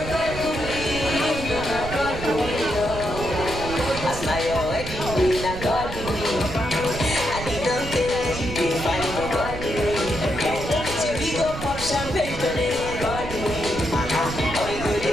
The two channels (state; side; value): noise; right; rumble, 8 dB below the sound